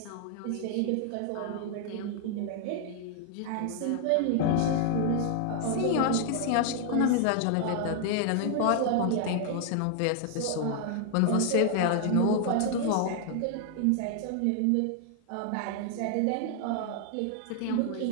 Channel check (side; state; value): both; different; correlation 0.00